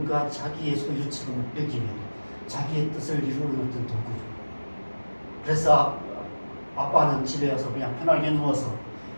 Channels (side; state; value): both; inverted; correlation -1.00